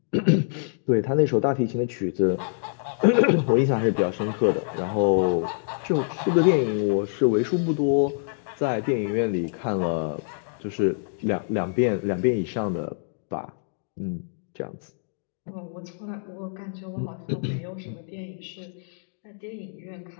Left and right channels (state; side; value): silent; right; digital silence